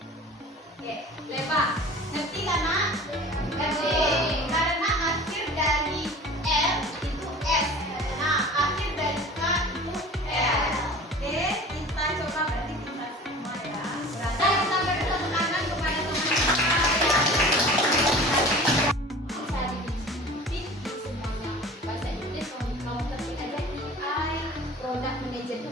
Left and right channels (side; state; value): both; normal; correlation 0.41